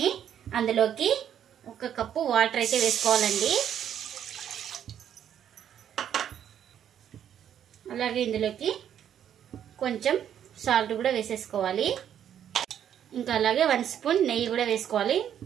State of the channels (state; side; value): quieter; left; 9.6 dB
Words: అందులోకి 1 కప్పు వాటర్ అయితే వేసుకోవాలండి. అలాగే ఇందులోకి కొంచెం సాల్ట్ కూడా వేసేసుకోవాలి. ఇంకా అలాగే 1 స్పూన్ నెయ్యి కూడా వేసుకోవాలి.